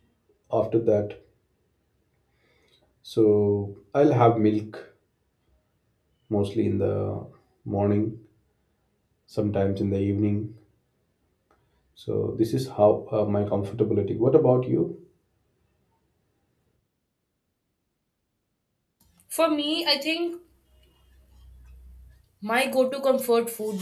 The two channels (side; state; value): both; identical; correlation 1.00